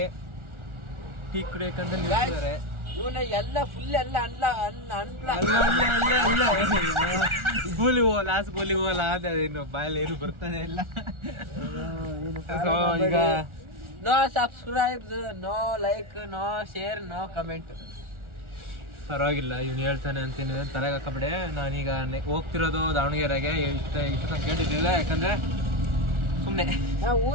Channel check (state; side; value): late; left; 1.4 ms